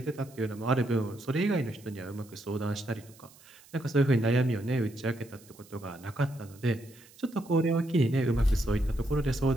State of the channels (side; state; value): right; noise; hiss, 25 dB below the sound